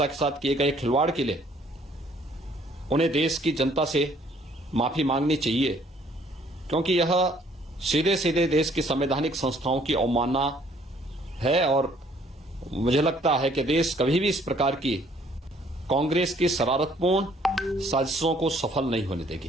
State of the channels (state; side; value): normal; both; correlation 0.61